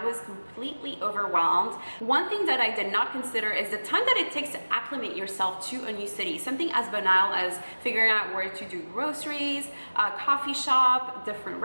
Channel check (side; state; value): both; inverted; correlation -1.00